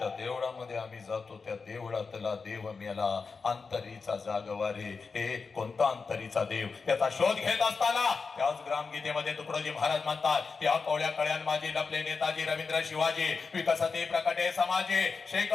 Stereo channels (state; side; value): quieter; right; 4.8 dB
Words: देवळामध्ये आम्ही जातो त्या देवळातला देव मेला. अंतरीचा जागवारे, हे कोणता अंतरीचा देव? त्याचा शोध घेत असताना त्याच ग्रामगीतेमध्ये तुकडोजी महाराज म्हणतात या कोळ्या कळ्यान माझी लपले नेताजी रवींद्र शिवाजी विकसते प्रकटे समाजे.